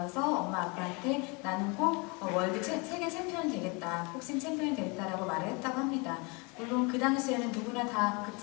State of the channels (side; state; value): right; quieter; 29.7 dB